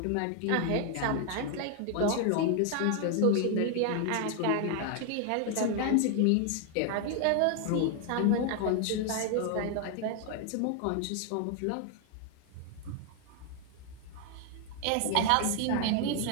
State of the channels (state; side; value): different; both; correlation 0.00